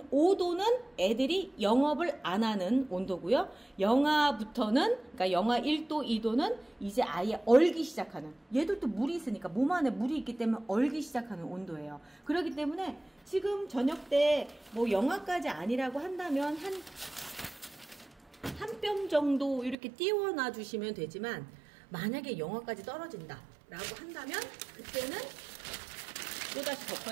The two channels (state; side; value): drops out; left; at 19.8 s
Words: 5도는 애들이 영업을 안 하는 온도고요. 영하부터는, 그러니까 영하 1도, 2도는 이제 아예 얼기 시작하는, 얘들도 물이 있으니까 몸 안에 물이 있기 때문에 얼기 시작하는 온도예요. 그렇기 때문에 지금 저녁 때 뭐 영하까지 아니라고 한다면 한 뼘 정도 이렇게 띄워놔 주시면 되지만, 만약에 영하까지 떨어진다 라고 한다면 그때는 또다시